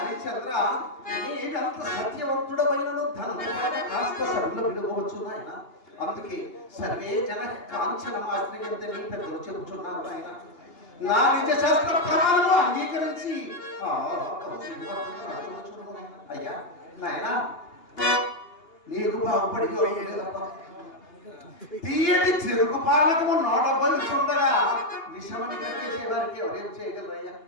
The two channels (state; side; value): late; right; 2.8 ms